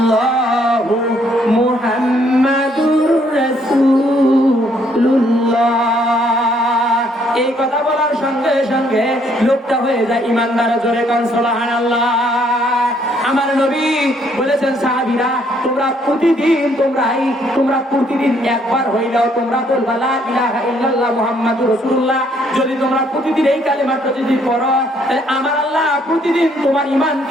মুহাম্মাদুর রাসূলুল্লাহ। এই কথা বলার সঙ্গে সঙ্গে লোকটা হয়ে যায় ইমানদার। জোরে কান সুবহানাল্লাহ। আমার নবী বলেছেন, সাহাবীরা তোমরা প্রতিদিন একবার হইলেও তোমরা বলবা লা ইলাহা ইল্লাল্লাহ মুহাম্মাদুর রাসূলুল্লাহ। যদি তোমরা প্রতিদিন এই কালেমাটা যদি পড়ো, তাহলে আমার আল্লাহ প্রতিদিন তোমার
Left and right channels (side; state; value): both; normal; correlation 0.67